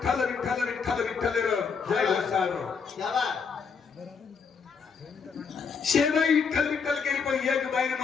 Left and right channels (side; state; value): right; quieter; 5.7 dB